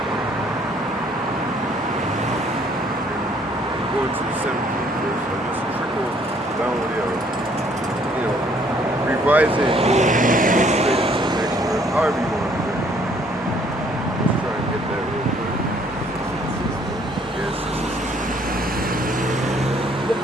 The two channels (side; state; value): both; normal; correlation 0.63